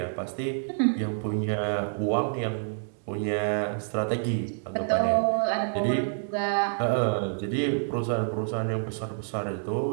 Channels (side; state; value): left; silent; digital silence